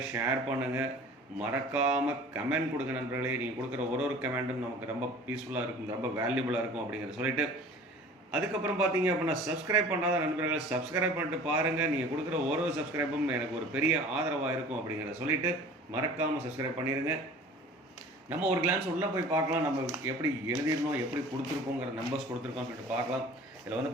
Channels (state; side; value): normal; both; correlation 0.44